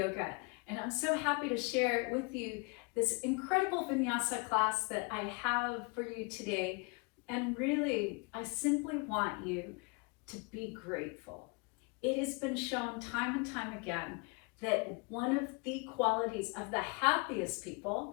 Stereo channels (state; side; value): quieter; right; 30.9 dB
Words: and I'm so happy to share with you this incredible Vinyasa class that I have for you today. And really, I simply want you to be grateful. It has been shown time and time again that one of the qualities of the happiest